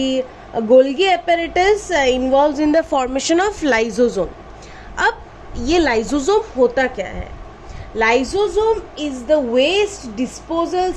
Golgi apparatus involves in the formation of lysosome. अब ये लाइसोसोम होता क्या है? Lysosome is the waste disposal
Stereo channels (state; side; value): identical; both; correlation 1.00